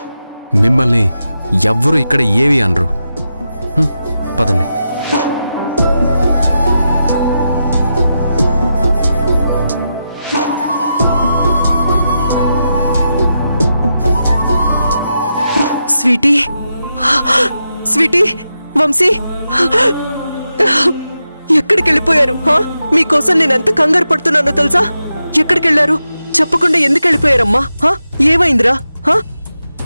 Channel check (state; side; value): inverted; both; correlation -0.88